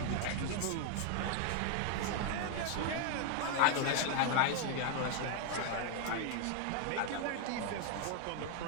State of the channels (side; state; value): both; different; correlation 0.00